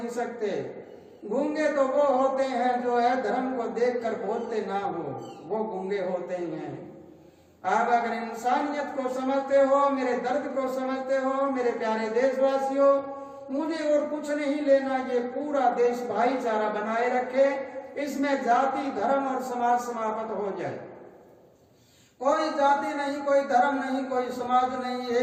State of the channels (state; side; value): identical; both; correlation 1.00